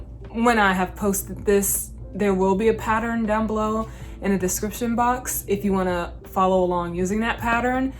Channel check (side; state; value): both; identical; correlation 1.00